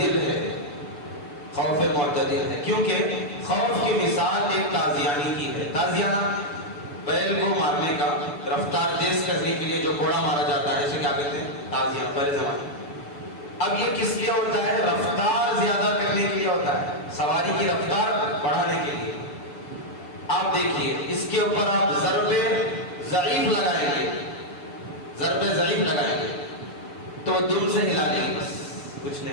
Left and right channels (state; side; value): late; right; 6.9 ms